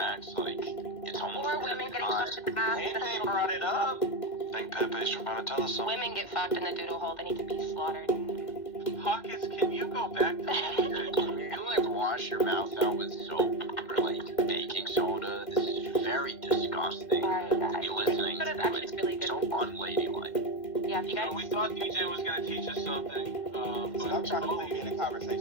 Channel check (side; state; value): right; late; 2.1 ms